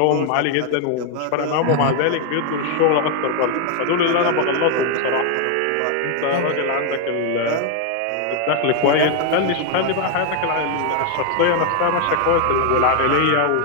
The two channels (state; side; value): different; both; correlation 0.01